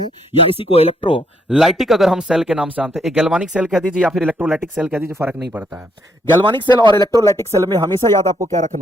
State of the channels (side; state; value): both; normal; correlation 0.72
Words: या इसी को इलेक्ट्रोलाइटिक अगर हम सेल के नाम से जानते हैं, गैल्वानिक सेल कह दीजिए या फिर इलेक्ट्रोलाइटिक सेल कह दीजिए, फर्क नहीं पड़ता है। गैल्वानिक सेल और इलेक्ट्रोलाइटिक सेल में हमेशा याद आपको क्या